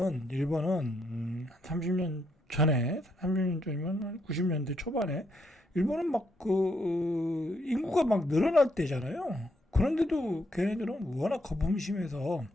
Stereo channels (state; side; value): normal; both; correlation 0.75